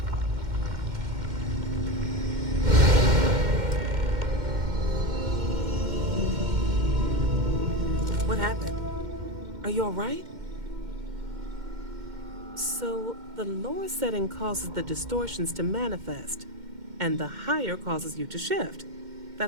What happened? Are you all right? So, the lower setting causes the distortions to manifest, and the higher causes you to shift.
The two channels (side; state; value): left; late; 2.1 ms